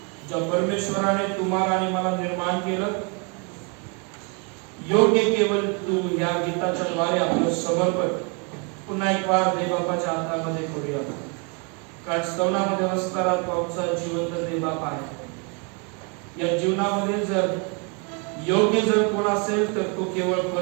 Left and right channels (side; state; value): left; quieter; 33.9 dB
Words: ज्या परमेश्वराने तुम्हाला आणि मला निर्माण केलं, योग्य केवळ तू या गीताच्या द्वारे आपलं समर्पण पुन्हा एक वार देवबापाच्या हातामध्ये करूया. कारण स्तवनामध्ये असणारा तो आमचा जिवंत देवबाप आहे. या जीवनामध्ये जर योग्य जर कोण असेल तर तो केवळ